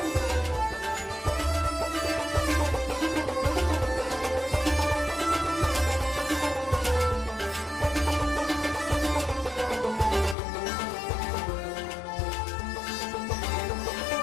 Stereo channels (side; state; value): right; drops out; at 10.4 s